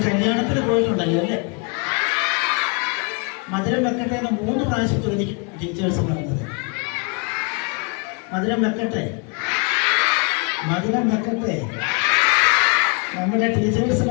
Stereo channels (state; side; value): quieter; right; 35.2 dB